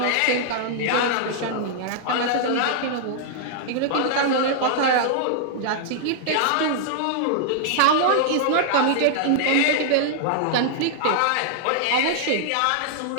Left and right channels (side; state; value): both; different; correlation -0.01